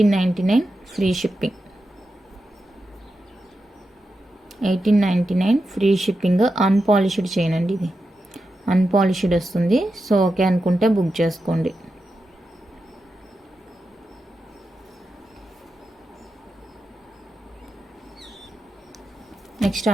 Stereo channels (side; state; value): both; normal; correlation 0.89